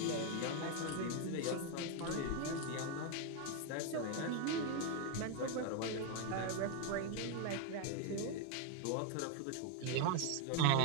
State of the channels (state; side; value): different; both; correlation 0.01